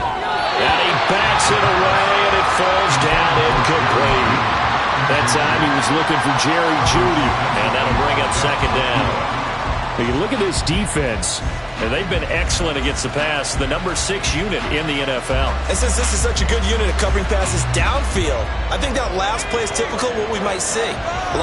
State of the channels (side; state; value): both; identical; correlation 1.00